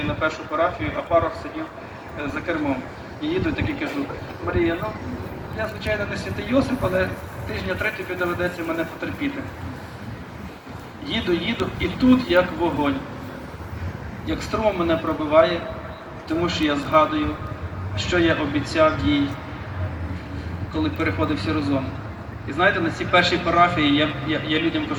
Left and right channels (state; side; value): identical; both; correlation 1.00